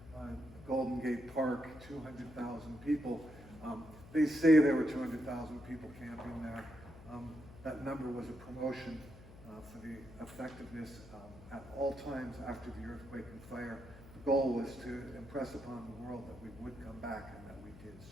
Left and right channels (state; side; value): noise; left; hum, 18 dB below the sound